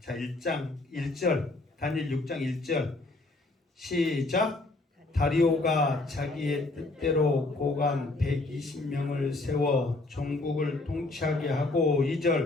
1장 1절 다니엘 6장 1절 시작. 다리오가 자기의 뜻대로 고관 120명을 세워 전국을 통치하게 하고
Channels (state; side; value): quieter; right; 3.0 dB